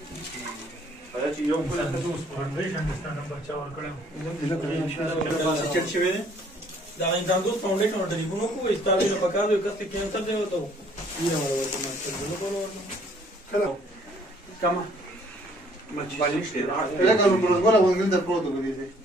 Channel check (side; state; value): both; normal; correlation 0.61